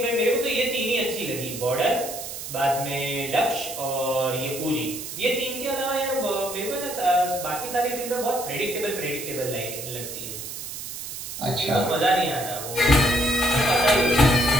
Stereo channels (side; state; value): right; noise; hiss, 8 dB below the sound